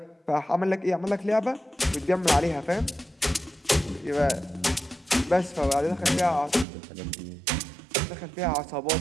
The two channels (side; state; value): left; drops out; at 6.7 s